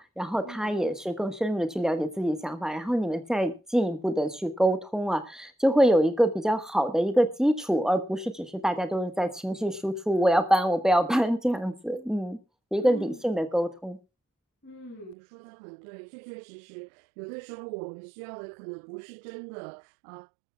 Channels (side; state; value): left; drops out; at 15.2 s